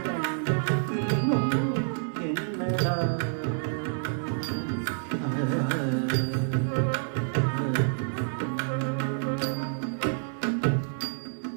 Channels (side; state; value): left; silent; digital silence